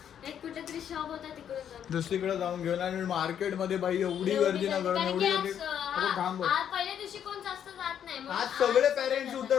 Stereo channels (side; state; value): right; quieter; 9.2 dB